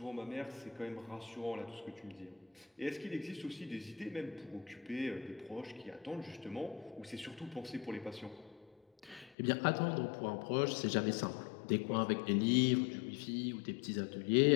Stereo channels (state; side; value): drops out; right; at 9.3 s